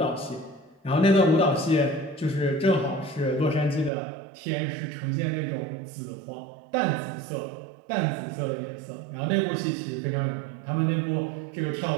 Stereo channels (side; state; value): left; drops out; at 3.9 s